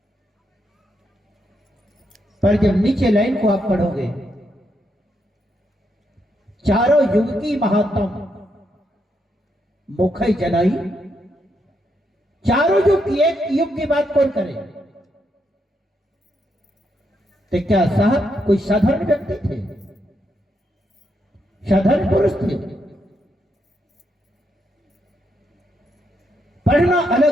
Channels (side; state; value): both; normal; correlation 0.79